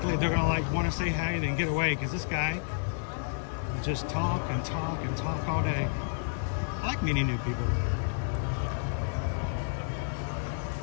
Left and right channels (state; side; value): silent; right; digital silence